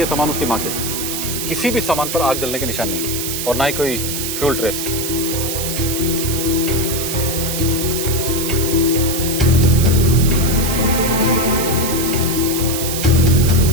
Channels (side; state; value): right; noise; hiss, 3 dB below the sound